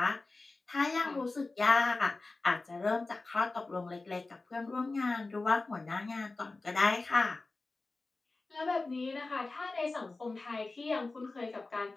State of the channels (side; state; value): right; quieter; 3.4 dB